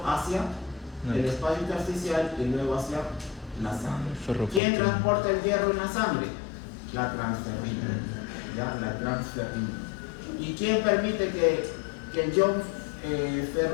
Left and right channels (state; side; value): drops out; right; at 4.6 s